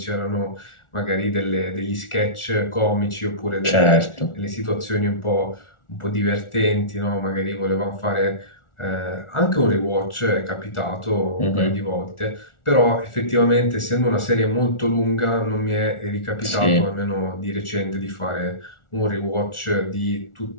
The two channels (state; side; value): late; right; 1.4 ms